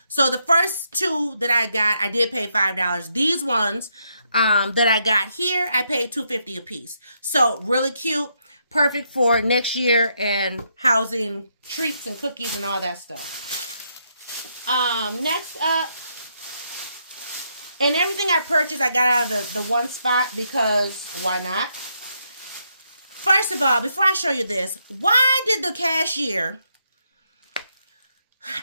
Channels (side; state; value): both; inverted; correlation -0.77